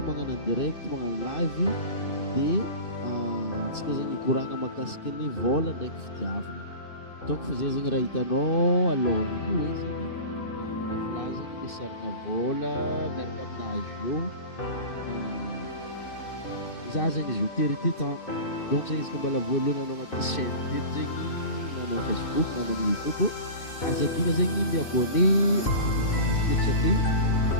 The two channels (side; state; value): right; late; 2.6 ms